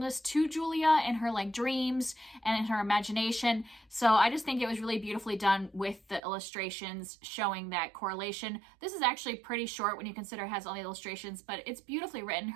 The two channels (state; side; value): drops out; left; at 6.2 s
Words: to Julia in her like dreams and in her imagination. So I just think it was really beautifully done with the illustrations showing that correlation. This is actually pretty short when you consider it has all the illustrations, but it's beautifully written.